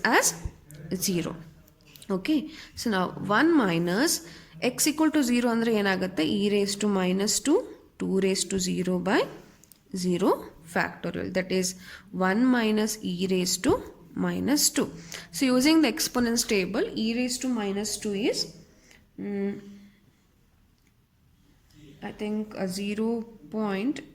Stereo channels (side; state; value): both; identical; correlation 1.00